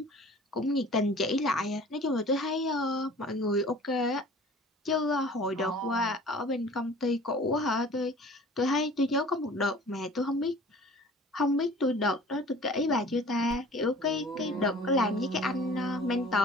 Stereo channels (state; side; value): normal; both; correlation 0.46